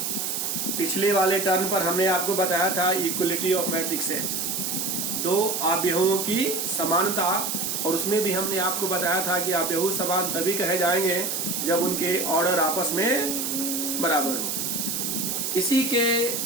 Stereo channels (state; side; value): noise; right; hiss, 1 dB below the sound